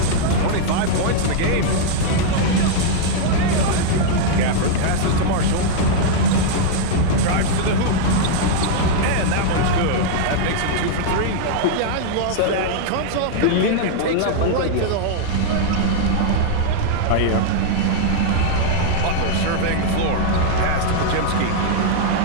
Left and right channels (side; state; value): both; different; correlation -0.01